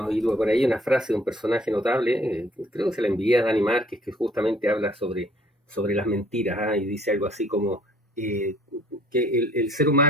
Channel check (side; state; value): both; normal; correlation 0.59